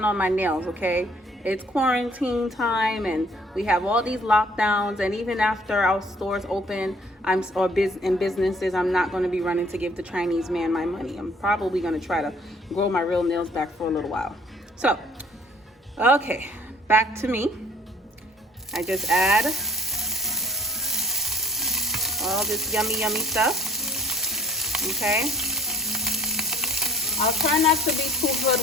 on my nails, okay? It's quarantine time and we have all these lockdowns, and even after our stores open, in businesses, I'm not going to be running to give the Chinese man my money. I'm probably going to try to grow my real nails back for a little while. So okay, back to me. I just add all this yummy stuff. Okay, I'll try not to be too good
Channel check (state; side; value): normal; both; correlation 0.57